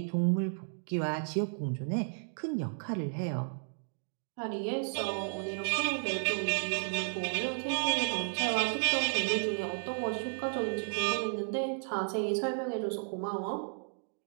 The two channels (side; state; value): left; silent; digital silence